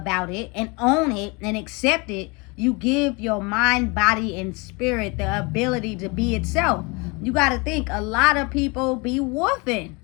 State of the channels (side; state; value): right; quieter; 28.5 dB